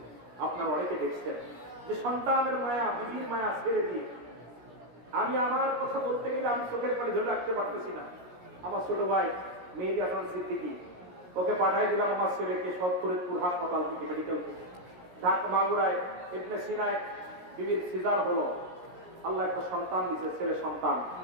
আপনার অনেকে দেখছেন যে সন্তানের মায়া, বিবির মায়া ছেড়ে দিয়ে আমি আমার কথা বলতে গেলে আমি চোখের পানি ধরে রাখতে পারতেছি না। আমার ছোট ভাই মেহেদী হাসান সিদ্দিকী, ওকে পাঠাই দিলাম আমার ছেলেকে ফরিদপুর হাসপাতাল থেকে, মেডিকেল থেকে। ঢাকা মাগুরায় ইবনে সিনায় বিবির সিজার হলো, আল্লাহ একটা সন্তান দিছে, ছেলে সন্তান।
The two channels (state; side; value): late; left; 17 ms